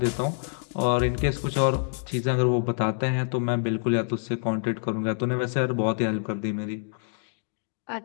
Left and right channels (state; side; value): silent; right; digital silence